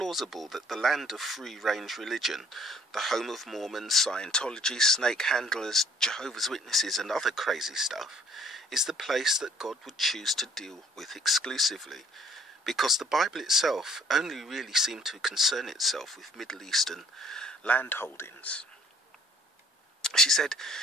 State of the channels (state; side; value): normal; both; correlation 0.59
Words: that the land of free-range religion, the home of Mormons, Scientology, snake handlers, Jehovah's Witnesses and other crazy stuff, is the place that God would choose to deal with exclusively? Because the Bible itself only really seemed to concern itself with Middle Eastern land holdings. She said,